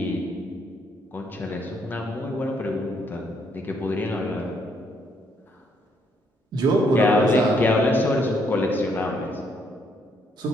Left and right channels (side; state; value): both; normal; correlation 0.71